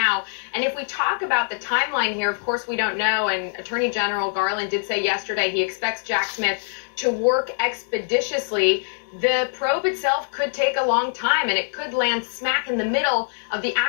And if we talk about the timeline here, of course, we don't know. And Attorney General Garland did say yesterday he expects Jack Smith to work expeditiously. The probe itself could take a long time, and it could land smack in the middle of the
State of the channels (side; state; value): right; silent; digital silence